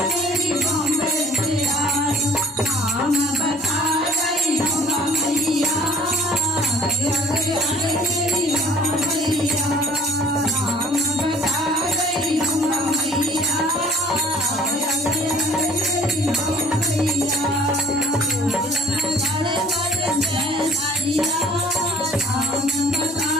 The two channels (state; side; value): normal; both; correlation 0.54